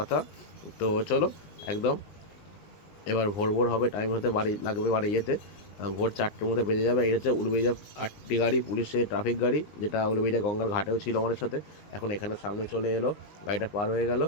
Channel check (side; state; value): right; late; 20 ms